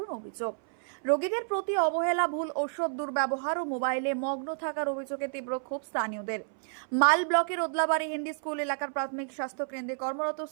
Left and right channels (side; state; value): left; silent; 58 dB below the other